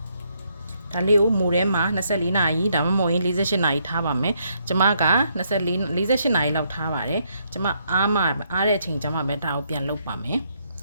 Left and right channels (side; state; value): both; inverted; correlation -0.74